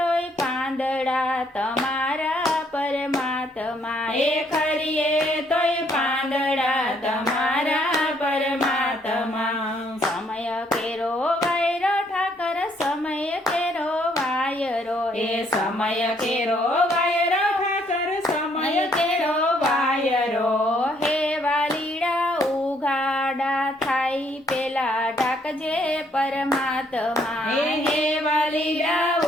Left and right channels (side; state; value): both; normal; correlation 0.68